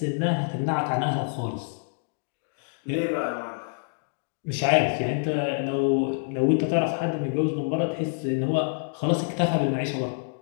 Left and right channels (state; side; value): silent; right; digital silence